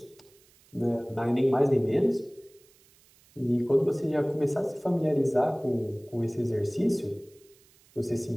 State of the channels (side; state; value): right; noise; hiss, 30 dB below the sound